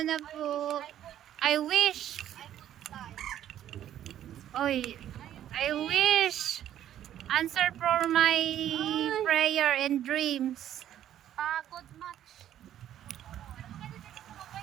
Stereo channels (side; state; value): left; quieter; 11.3 dB